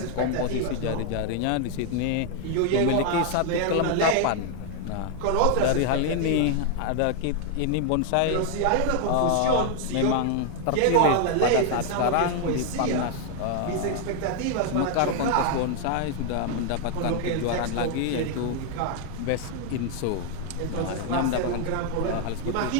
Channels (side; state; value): both; different; correlation 0.00